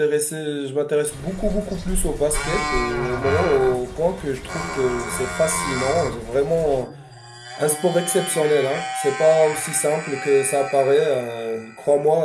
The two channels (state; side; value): identical; both; correlation 1.00